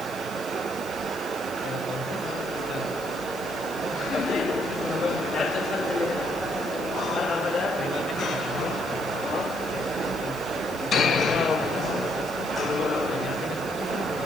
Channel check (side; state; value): left; noise; hiss, 17 dB below the sound